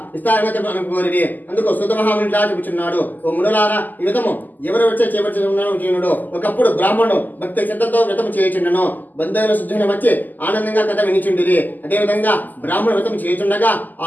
ఇస్తారని కోరిరి. అందుకు సుతమహాముని ఇట్లా చెబుతున్నాడు, ఓ మునులారా, ఈ వ్రతము ఎవరు వచ్చే చేపడుతున్నాడు. ఒకప్పుడు బ్రాహ్మణుడు భక్తి శ్రద్ధతో వ్రతం చేయుచుండెను. బంధువుల శుద్ధుని వచ్చి ఆనందంగా కథ వినిచుండిరి. అదేవిధంగా బ్రాహ్మణ వ్రతం చేయుచుండగా ఆ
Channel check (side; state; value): right; late; 0.084 ms